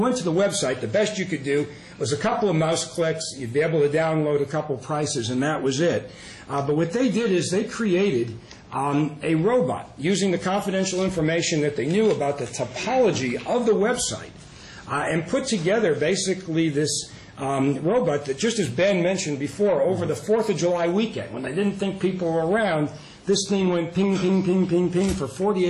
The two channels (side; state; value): both; identical; correlation 1.00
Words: to the website, the best you could do was a couple of mouse clicks. You'd be able to download a couple prices, and that was it. But what they did is they created a robot using the confidential information that they knew about the topology of the website and put together basically this robot that, just as Ben mentioned before, over the 4th of July weekend, when they didn't think people were around, this thing went ping, ping, ping, ping, ping for